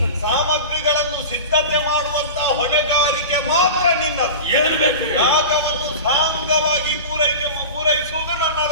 ಸಾಮಗ್ರಿಗಳನ್ನು ಸಿದ್ಧತೆ ಮಾಡುವಂತ ಹೊಣೆಗಾರಿಕೆ ಮಾತ್ರ ನಿನ್ನದು. ಏನು ಬೇಕು? ಯಾಗವನ್ನು ಸಾಂಗವಾಗಿ ಪೂರೈಸುವುದು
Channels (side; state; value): both; inverted; correlation -0.31